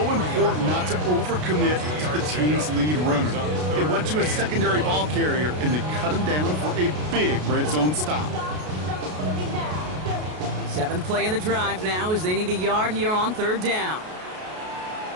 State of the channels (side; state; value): left; late; 33 ms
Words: important not to overcommit to the team's lead runner. It went to a secondary ball carrier, and they cut him down for a big red zone stop. 7th play of the drive now as they need a yard here on 3rd down.